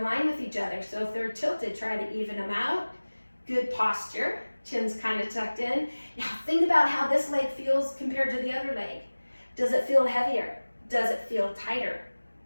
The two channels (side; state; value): both; inverted; correlation -1.00